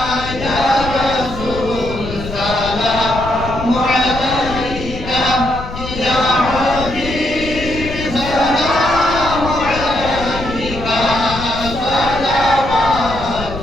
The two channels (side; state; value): left; noise; rumble, 10 dB below the sound